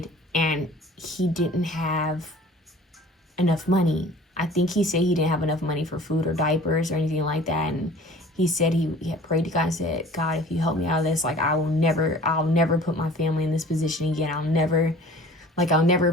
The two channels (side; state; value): both; normal; correlation 0.46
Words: and he didn't have enough money. I think he said he didn't have enough money for food or diapers or anything like that. And he said he had prayed to God and said, God, if you help me out of this, like I'll never put my family in this position again. I'll never